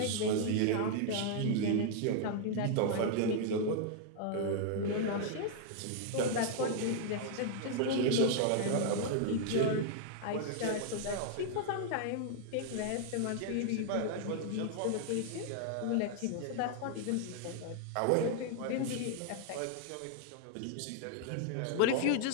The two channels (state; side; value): different; both; correlation 0.00